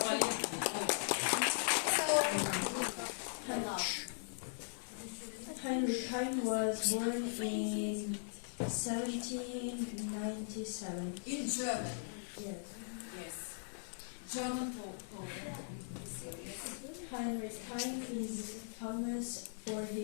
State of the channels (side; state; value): right; silent; digital silence